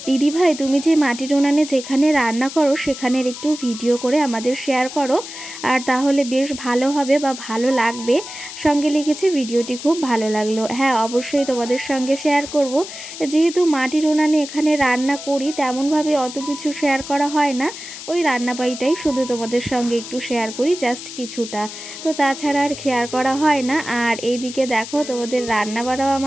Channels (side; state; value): left; noise; hiss, 11 dB below the sound